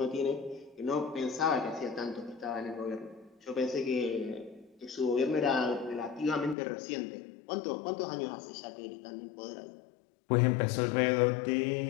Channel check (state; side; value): drops out; right; at 6.6 s